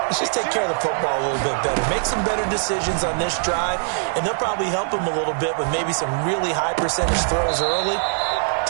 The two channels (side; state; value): left; silent; digital silence